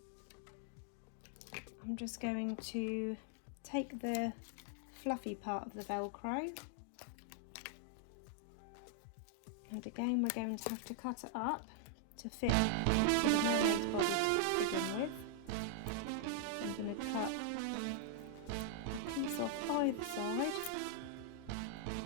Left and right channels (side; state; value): both; different; correlation 0.00